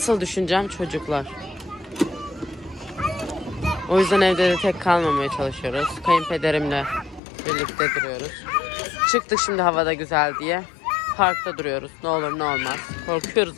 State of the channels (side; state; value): right; drops out; at 7.2 s